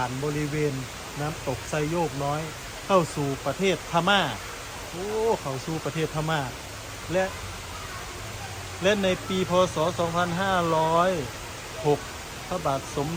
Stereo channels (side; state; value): both; identical; correlation 1.00